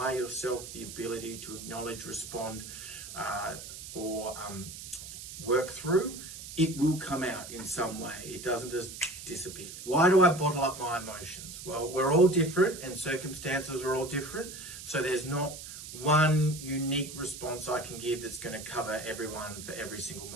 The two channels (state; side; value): noise; right; hiss, 11 dB below the sound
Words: yourself the ability to acknowledge, respond, or work through, it will come out in some way. It doesn't just disappear. Why do I bottle up my emotions? Well, we're all different and circumstances are all different. So there's not one unique response I can give that's going to cover everyone for every single